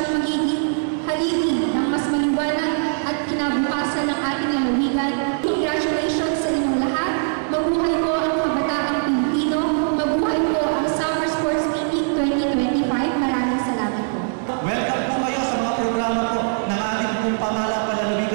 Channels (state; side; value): silent; left; digital silence